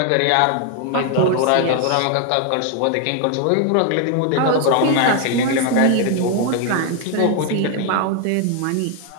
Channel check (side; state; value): both; different; correlation 0.01